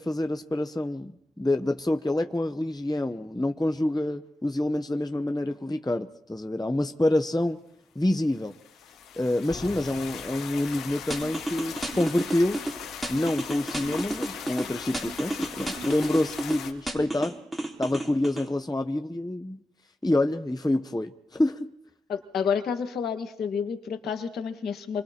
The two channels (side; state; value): both; normal; correlation 0.93